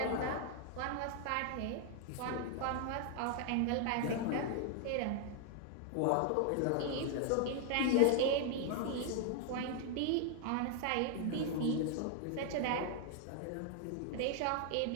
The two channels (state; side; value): different; both; correlation 0.00